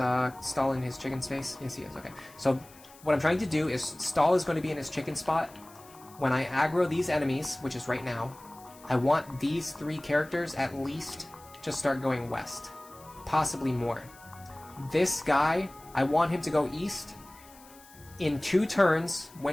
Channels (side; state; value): left; noise; hiss, 23 dB below the sound